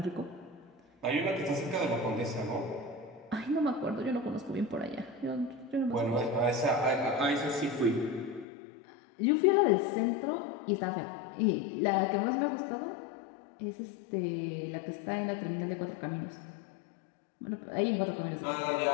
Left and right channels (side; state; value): right; drops out; at 8.5 s